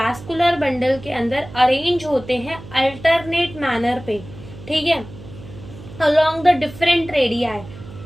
बंडल के अंदर अरेंज होते हैं अल्टरनेट मैनर पे, ठीक है, अलोंग द डिफरेंट रेडियाई,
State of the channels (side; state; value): right; noise; hum, 16 dB below the sound